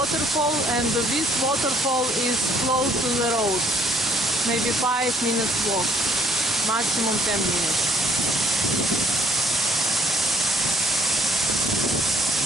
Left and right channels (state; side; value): normal; both; correlation 0.63